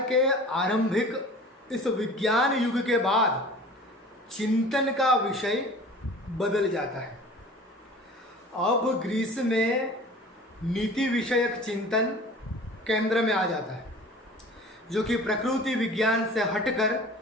के आरंभिक इस विज्ञान युग के बाद चिंतन का विषय बदल जाता है। अब ग्रीस में नीति विषयक चिंतन केंद्र में आ जाता है, जो कि प्रकृति विज्ञान से हटकर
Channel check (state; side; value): normal; both; correlation 0.43